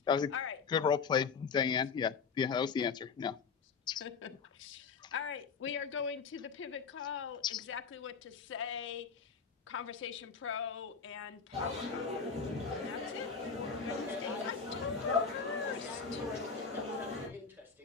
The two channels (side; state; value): right; quieter; 5.7 dB